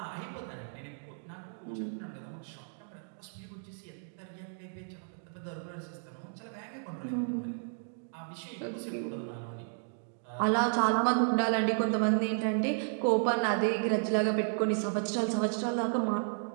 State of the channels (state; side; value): silent; left; digital silence